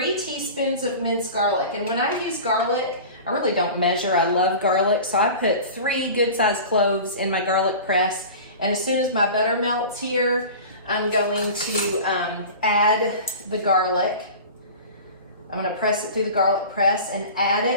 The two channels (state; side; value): inverted; both; correlation -0.36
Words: teaspoons of minced garlic. And when I use garlic, I really don't measure. I love garlic, so I put 3 good-sized cloves in my garlic press. And as soon as my butter melts here, I'm going to add the garlic. I'm gonna press it through the garlic press and add